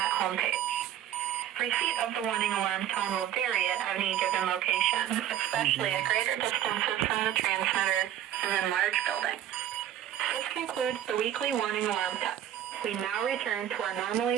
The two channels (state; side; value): quieter; left; 11.2 dB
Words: homepage. Receipt of the warning alarm tone will vary at any given location, especially at greater distances from the transmitter and in large buildings. This concludes the weekly warning alarm test. We now return to our